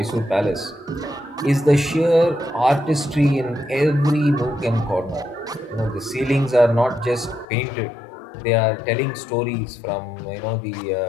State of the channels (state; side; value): drops out; right; at 7.5 s